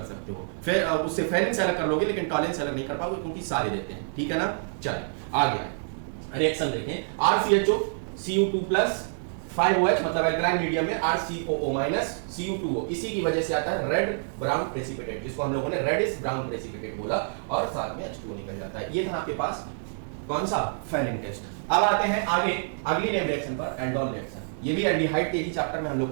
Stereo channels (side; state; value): left; silent; digital silence